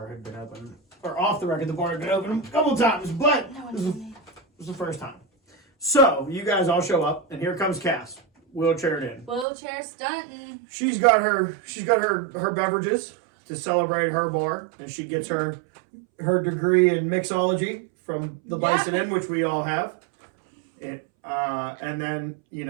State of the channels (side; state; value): left; drops out; at 9.5 s